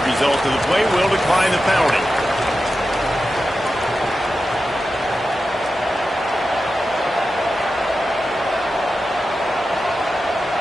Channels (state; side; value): normal; both; correlation 0.91